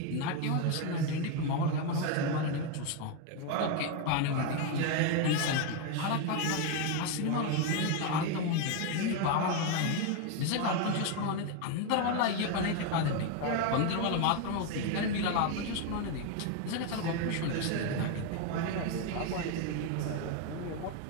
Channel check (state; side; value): different; both; correlation 0.02